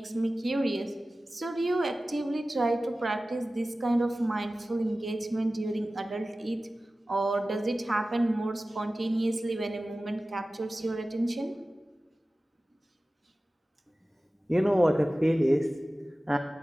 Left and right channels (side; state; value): both; normal; correlation 0.96